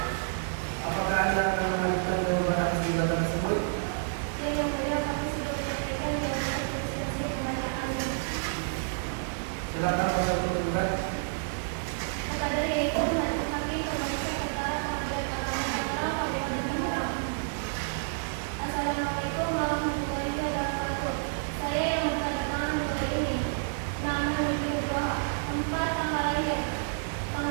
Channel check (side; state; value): left; silent; digital silence